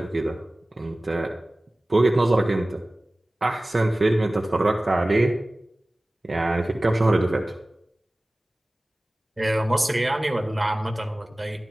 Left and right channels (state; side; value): normal; both; correlation 0.98